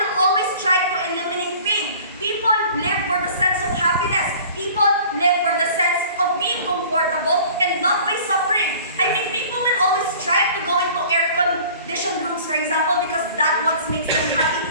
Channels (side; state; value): both; inverted; correlation -0.47